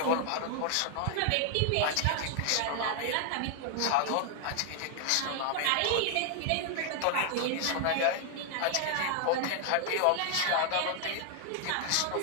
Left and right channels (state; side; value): different; both; correlation 0.00